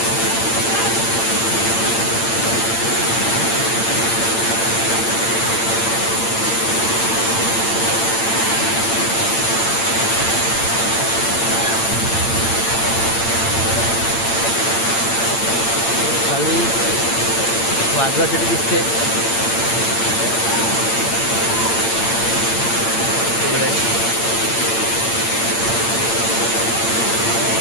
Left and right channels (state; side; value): late; right; 8.8 ms